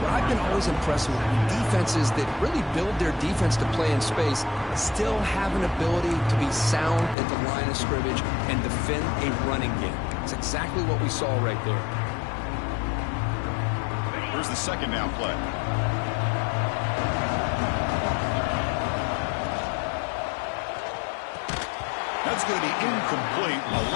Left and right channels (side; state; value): right; drops out; at 7.2 s